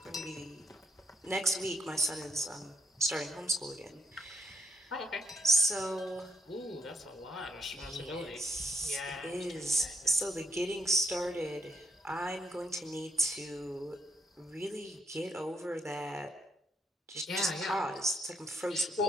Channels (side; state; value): both; normal; correlation 0.77